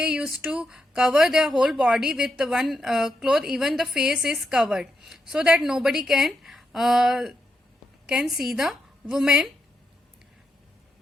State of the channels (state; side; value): normal; both; correlation 0.83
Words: used to cover their whole body with one cloth. Even the face is covered, so that nobody can see the